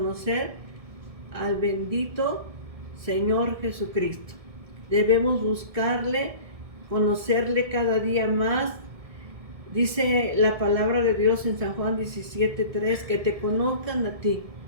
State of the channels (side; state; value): left; late; 1.7 ms